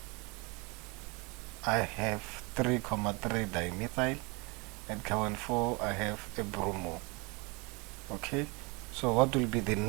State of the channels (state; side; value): quieter; left; 28.7 dB